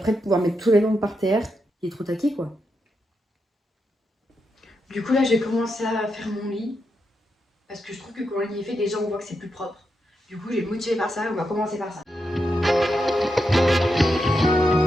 de pouvoir mettre tous les vêtements par terre. Il est trop taqué, quoi. Du coup, là, je vais commencer à faire mon lit. Parce que je trouve que quand le lit est fait, déjà, on voit que c'est plus propre. Du coup, je vais me motiver par ça et on va commencer par ça.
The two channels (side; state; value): both; normal; correlation 0.85